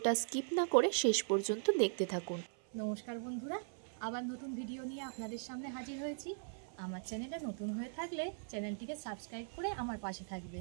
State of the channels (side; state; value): left; silent; 51 dB below the other